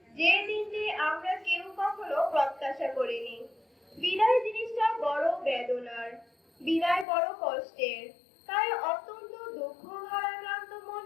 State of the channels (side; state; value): right; drops out; at 7.1 s